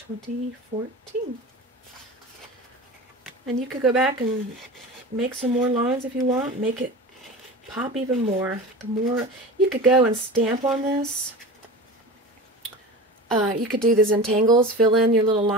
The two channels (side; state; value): both; normal; correlation 0.32